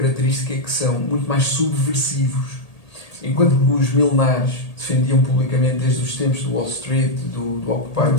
que são muito mais subversivos. Enquanto que os milenares defendiam publicamente desde os tempos do Wall Street, do Occupy Wall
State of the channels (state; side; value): late; right; 1.8 ms